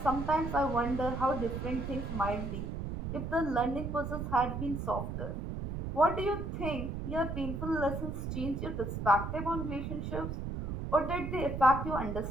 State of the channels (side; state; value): right; noise; rumble, 4 dB below the sound